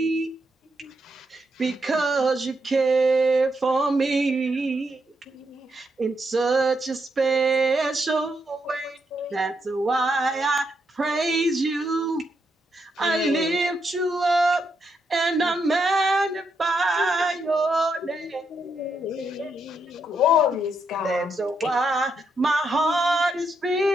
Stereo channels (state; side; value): normal; both; correlation 0.80